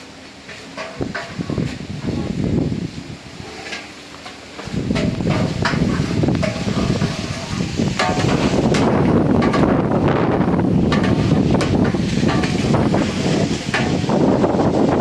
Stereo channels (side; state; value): both; identical; correlation 1.00